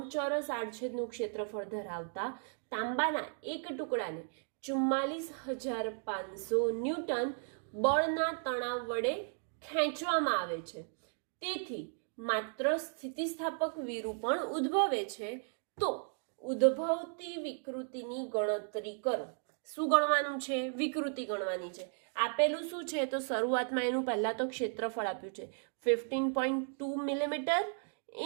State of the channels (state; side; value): silent; left; 54 dB below the other